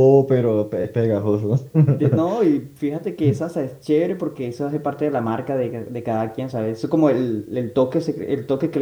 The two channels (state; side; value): identical; both; correlation 1.00